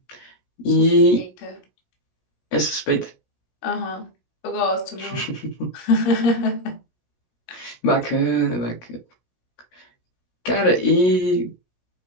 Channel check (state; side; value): late; right; 17 ms